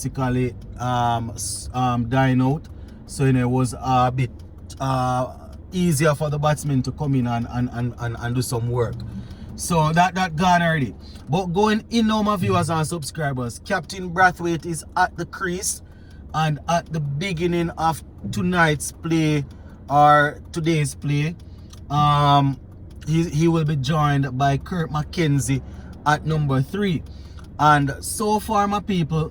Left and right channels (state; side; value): identical; both; correlation 1.00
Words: dying out. So, it was a bit easier for the batsmen to come in and do some work. So that gone already. But going in now, my viewers and subscribers, Captain Brathwaite is at the crease, and at the beginning of tonight's play or today's play, he will be joined by Kurt McKenzie at number 3. And so far, my people,